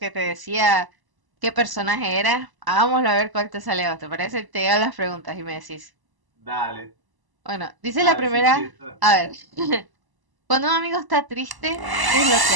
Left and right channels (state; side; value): late; left; 1.0 ms